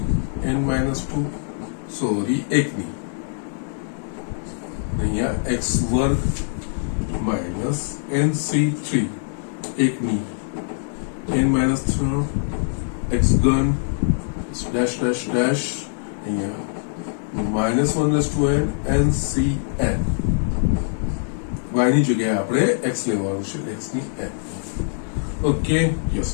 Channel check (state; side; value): silent; right; digital silence